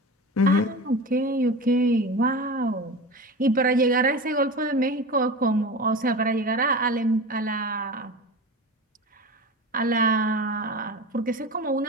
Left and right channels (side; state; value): both; normal; correlation 0.30